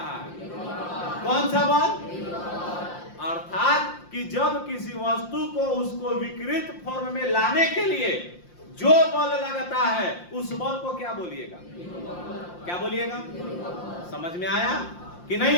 है? कौन सा बल? अर्थात कि जब किसी वस्तु को उसको विकृत फॉर्म में लाने के लिए जो बल लगता है, उस बल को क्या बोलिएगा? क्या बोलिएगा? समझ में आया कि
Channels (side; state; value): right; late; 5.7 ms